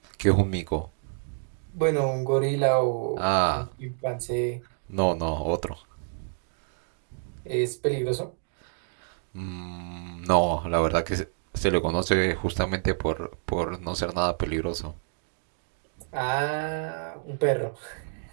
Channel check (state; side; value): silent; left; digital silence